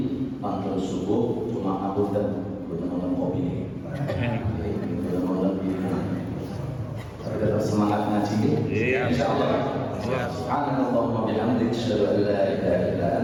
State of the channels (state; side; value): identical; both; correlation 1.00